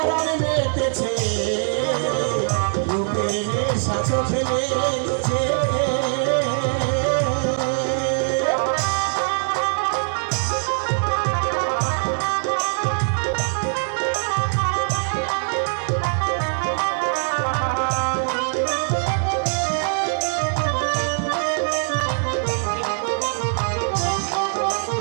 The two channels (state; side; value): silent; left; digital silence